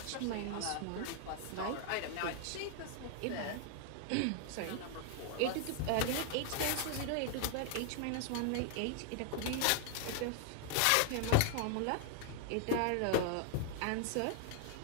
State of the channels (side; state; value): both; different; correlation 0.00